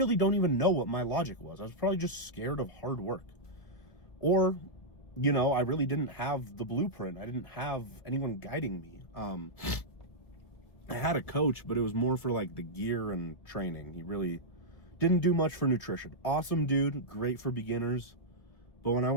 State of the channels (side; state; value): right; late; 1.7 ms